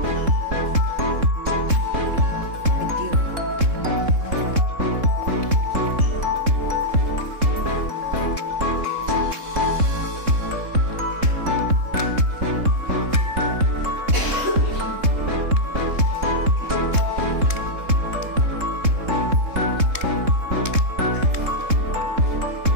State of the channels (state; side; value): late; left; 3.7 ms